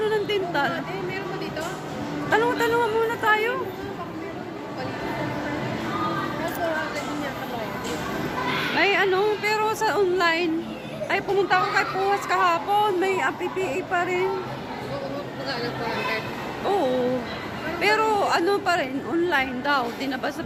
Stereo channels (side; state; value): both; identical; correlation 1.00